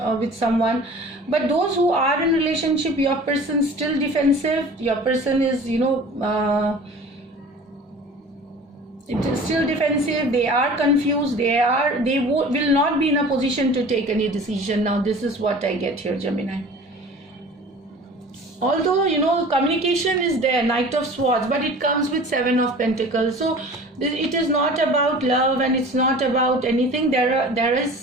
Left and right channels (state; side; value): normal; both; correlation 0.42